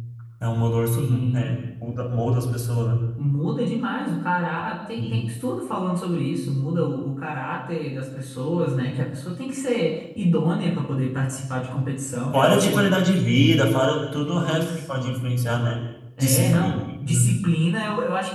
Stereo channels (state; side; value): identical; both; correlation 1.00